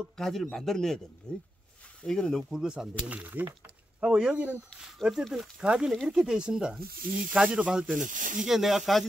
가지를 만들어내야 됩니다. 이거는 너무 굵어서 안 되겠네요. 하고 여기는 어쨌든 가지는 이렇게 되어 있습니다. 이 가지로 봤을 때는 이게 내가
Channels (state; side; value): normal; both; correlation 0.87